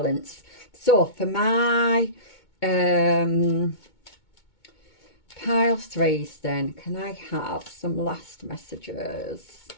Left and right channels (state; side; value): late; right; 2.2 ms